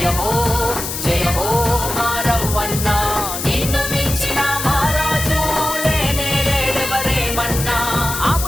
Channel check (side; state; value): left; noise; hiss, 5 dB below the sound